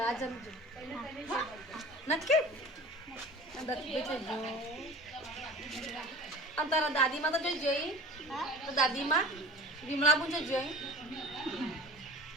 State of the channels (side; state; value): both; normal; correlation 0.39